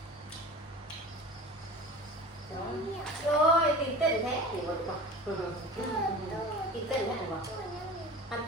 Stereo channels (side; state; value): both; normal; correlation 0.37